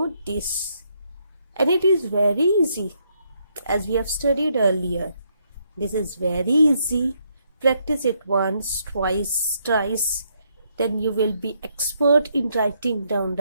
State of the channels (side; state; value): both; inverted; correlation -0.75